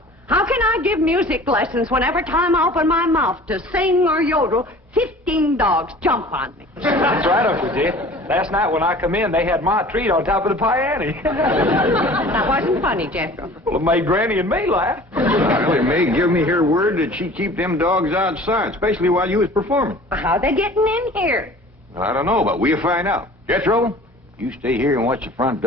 How can I give music lessons when every time I open my mouth to sing or yodel, 15 dogs jump on me? That's right, Uncle Jed. Last night when I come in, they had my treat on top of the piano. That wasn't funny, Jethro. Well, it made Granny and me laugh. Elly May give me her word that she'd keep them dogs outside, especially while you was performing. How they getting in here? Well, I don't know, but we'll find out. Jethro, you stay here and watch the front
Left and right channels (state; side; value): normal; both; correlation 0.45